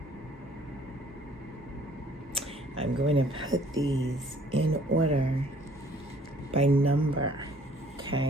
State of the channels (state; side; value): normal; both; correlation 0.58